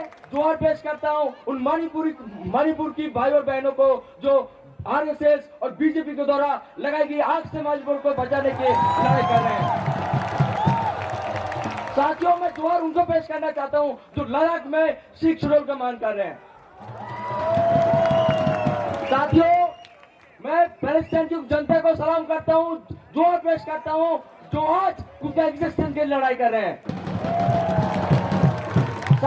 जोहार पेश करता हूं उन मणिपुर की भाई और बहनों को जो आरएसएस और बीजेपी के द्वारा लगाई गई आग से मणिपुर को बचाने की लड़ाई कर रहे हैं। साथियों, मैं जोहार उनको पेश करना चाहता हूं जो लद्दाख में सिख शेड्यूल का मान कर रहे हैं। साथियों, मैं पैलेस्टाइन की जनता को सलाम करता हूं, जोहार पेश करता हूं जो आज उनके एग्जिस्टेंस के लिए लड़ाई कर रहे हैं।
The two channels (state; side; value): identical; both; correlation 1.00